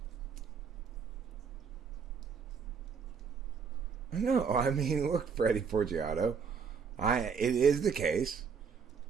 No, I mean, look, Freddie Forgiato. It is the case,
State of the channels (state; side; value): quieter; left; 6.1 dB